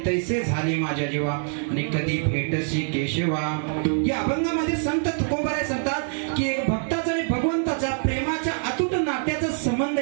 तैसे झाले माझ्या जीवा आणि कधी भेटसी केशवा. या अभंगामध्ये संत तुकोबाराय सांगतात की भक्ताचा आणि भगवंताच्या प्रेमाच्या अतूट नात्याचा संबंध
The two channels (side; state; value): left; silent; 62 dB below the other